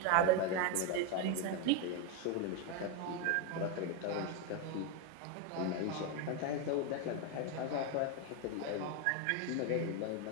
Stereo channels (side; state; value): both; different; correlation 0.02